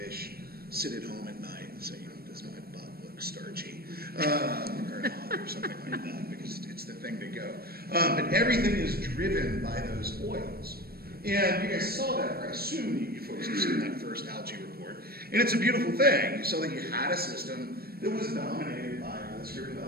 sit at home at night and say, does my butt look starchy? Or not, or something like that, because it's the thing to go. But everything is driven by those oils. And you guys saw that, or I assume you folks have seen that first algae report. And it's a beautiful thing. You saw that you had a system that was dominated by this group of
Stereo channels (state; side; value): late; left; 0.44 ms